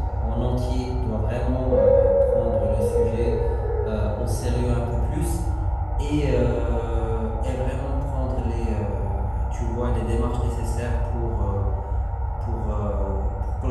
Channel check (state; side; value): identical; both; correlation 1.00